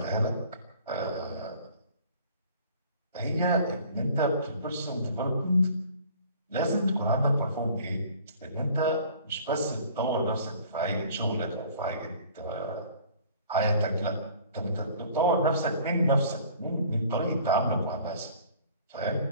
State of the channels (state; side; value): inverted; both; correlation -0.50